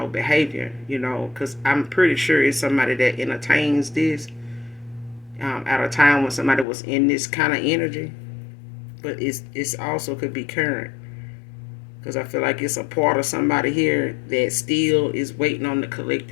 behavior, because I'm pretty sure it's somebody that entertains this at a time when somebody was in this kind of energy. But it's also could be current, because I feel like it's a part of somebody here that still is waiting on the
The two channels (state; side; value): drops out; right; at 6.7 s